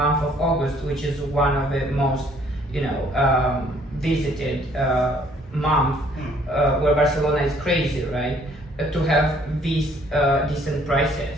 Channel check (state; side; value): normal; both; correlation 0.62